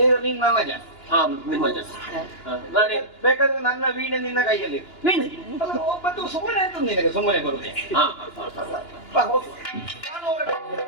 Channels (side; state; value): right; late; 2.9 ms